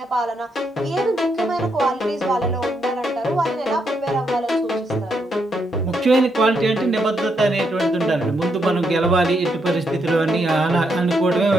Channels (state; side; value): normal; both; correlation 0.79